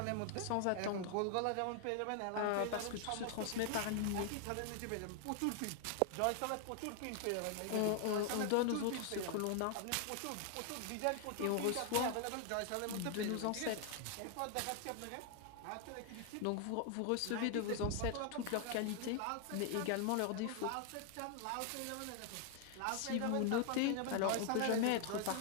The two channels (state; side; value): different; both; correlation 0.00